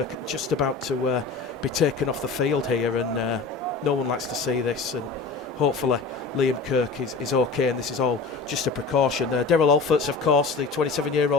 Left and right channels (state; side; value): quieter; right; 4.2 dB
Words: just about to be taken off the field here, and no one likes to see this. And hopefully Liam Kirk is okay, and this is all just a precaution. Daryl Alfords, of course, the